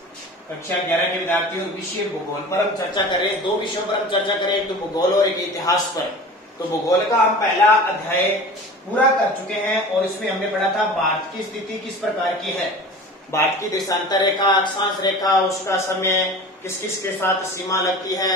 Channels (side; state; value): both; normal; correlation 0.38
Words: और विषय भूगोल पर हम चर्चा करें। दो विषयों पर हम चर्चा करें, एक तो भूगोल और एक इतिहास पर। तो भूगोल का हम पहला अध्याय पूरा कर चुके हैं और इसमें हमने पढ़ा था भारत की स्थिति किस प्रकार की है। भारत की देशांतर रेखा, अक्षांश रेखा, उसका समय, किस किस के साथ सीमा लगती